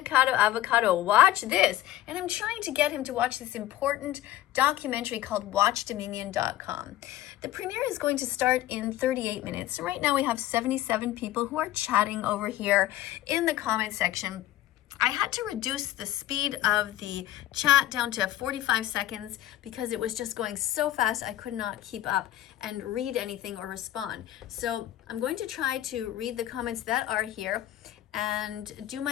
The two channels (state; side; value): quieter; right; 14.2 dB